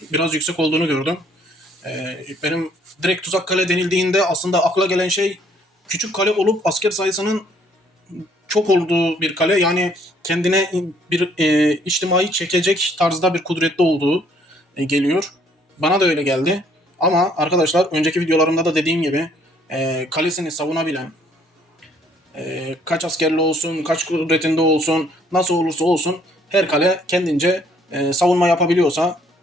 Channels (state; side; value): normal; both; correlation 0.64